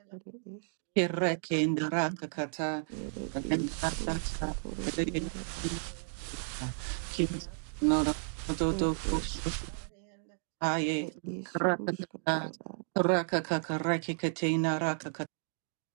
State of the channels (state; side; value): silent; left; digital silence